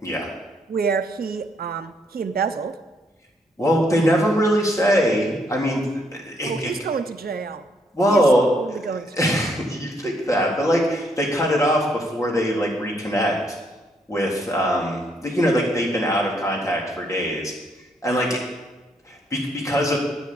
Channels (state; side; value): normal; both; correlation 0.72